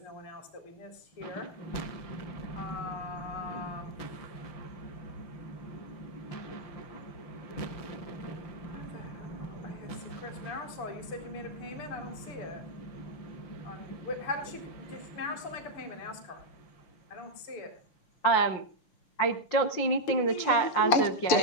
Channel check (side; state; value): right; late; 5.7 ms